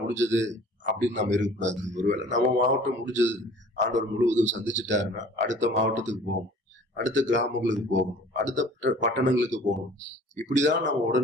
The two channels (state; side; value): normal; both; correlation 0.49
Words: முடிஞ்சது அப்படின்னு நம்ம இருக்கக்கூடாது. ஒருவேளை நம்ம மாவட்டம் முடிஞ்சது, ஆண்டவர் முழுவதும் சந்திச்சுட்டாருன்னா அடுத்த மாவட்டத்துக்கு போகணும், அடுத்த கிராமங்களுக்கு போகணும், அடுத்த பட்டணங்களுக்கு போகணும். இப்படிதான் நம்ம